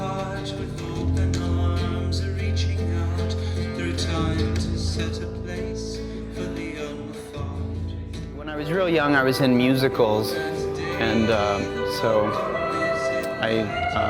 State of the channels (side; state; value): both; identical; correlation 1.00